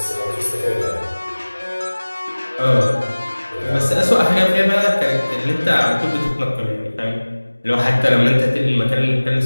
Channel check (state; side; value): inverted; both; correlation -1.00